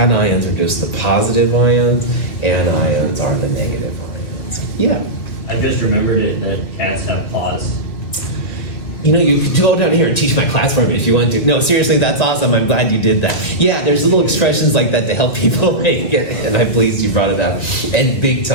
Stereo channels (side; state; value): right; late; 2.5 ms